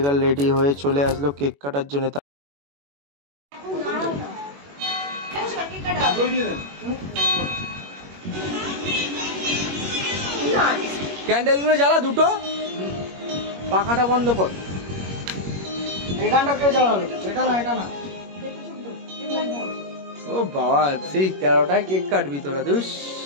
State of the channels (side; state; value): left; late; 21 ms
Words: গার্ল রেডি হয়ে চলে আসলো কেক কাটার জন্য। ক্যান্ডেল গুলো জ্বালা দুটো, পাখাটা বন্ধ কর। এখানটা কেউ জ্বালালো, এটা না এটা না। ও বাবা, সেই 13টায় কেক কাটবি তোরা? দুস